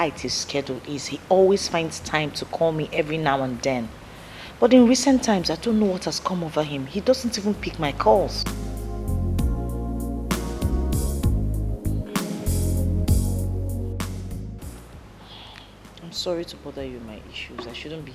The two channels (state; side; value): identical; both; correlation 1.00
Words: his schedule is, he always finds time to call me every now and then. But in recent times, I don't know what has come over him. He doesn't even pick my calls. I'm sorry to bother you with my issues. I shouldn't be...